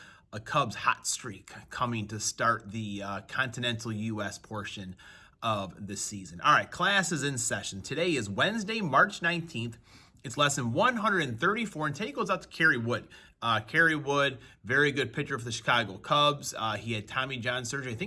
a Cubs hot streak coming to start the continental U.S. portion of the season. All right, class is in session. Today is Wednesday, March 19th. It's lesson 134, and today goes out to Kerry Wood. Kerry Wood, very good pitcher for the Chicago Cubs. He had Tommy John surgery, I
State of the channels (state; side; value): identical; both; correlation 1.00